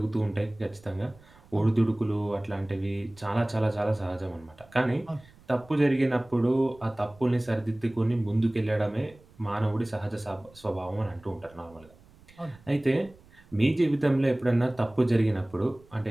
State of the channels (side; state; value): right; noise; rumble, 26 dB below the sound